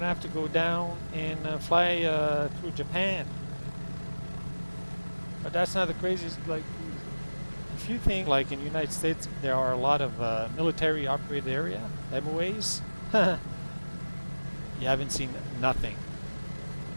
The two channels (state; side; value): inverted; both; correlation -1.00